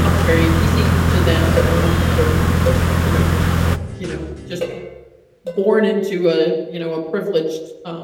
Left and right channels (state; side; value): identical; both; correlation 1.00